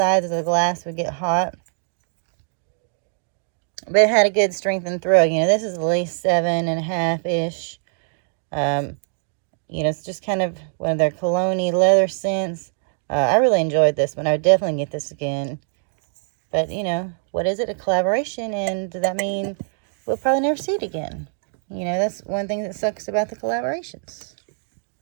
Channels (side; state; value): left; silent; digital silence